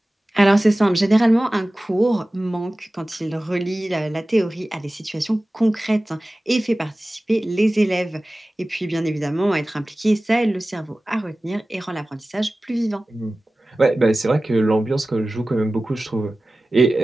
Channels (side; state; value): both; normal; correlation 0.97